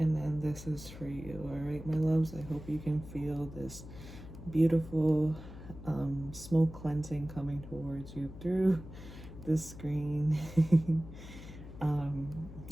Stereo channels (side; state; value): left; noise; hum, 14 dB below the sound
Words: then this is for you, all right, my loves? I hope you can feel this beautiful smoke cleansing coming towards you through the screen.